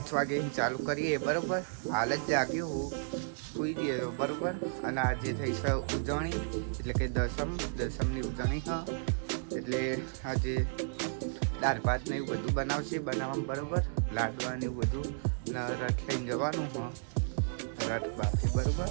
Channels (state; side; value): silent; left; digital silence